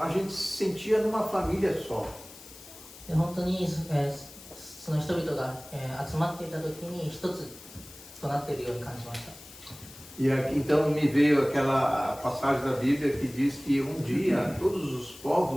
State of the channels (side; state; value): left; noise; hiss, 18 dB below the sound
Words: a gente se sentia numa família só. で本当に、その人々が、集まっていた時に一つとなっているように感じました。 E então me veio aquela passagem da Bíblia que diz que um dia todos os